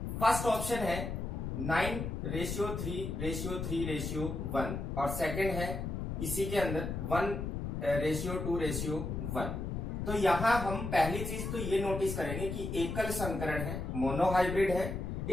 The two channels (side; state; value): left; noise; rumble, 4 dB below the sound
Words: फर्स्ट ऑप्शन है 9:3:3:1 और सेकंड है इसी के अंदर 1:2:1। तो यहां हम पहली चीज तो ये नोटिस करेंगे कि एकल संकरण है, मोनोहाइब्रिड है।